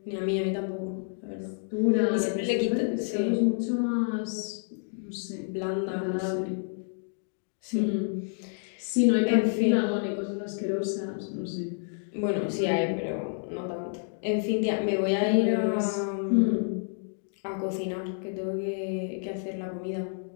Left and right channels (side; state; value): right; silent; digital silence